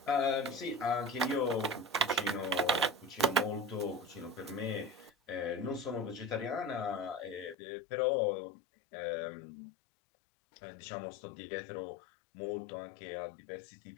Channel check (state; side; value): drops out; right; at 7.6 s